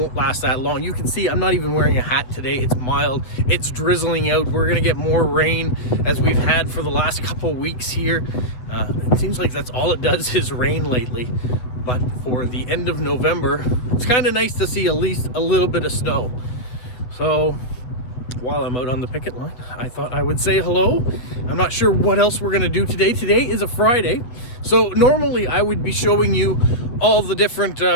last that long. You can see I'm not even wearing a hat today. It's mild. It's drizzling out. We're going to get more rain as we've had for the last couple weeks here. It seems like that's all it does is rain lately. But for the end of November, it's kind of nice to see at least a little bit of snow. So while I'm out on the picket line, I thought I would say hello. I'm not sure what else we're going to do today. Today is a Friday. So normally I would be showing you all the different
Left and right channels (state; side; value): late; right; 8.1 ms